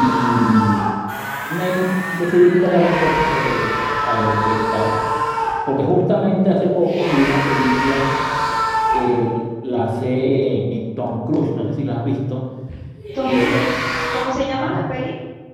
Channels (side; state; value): both; identical; correlation 1.00